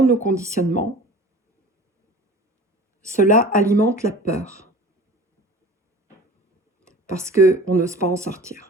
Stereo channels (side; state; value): both; normal; correlation 0.41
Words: nos conditionnements, cela alimente la peur. Parce qu'on n'ose pas en